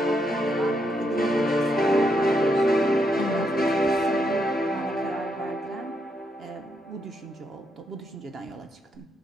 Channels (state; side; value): normal; both; correlation 0.79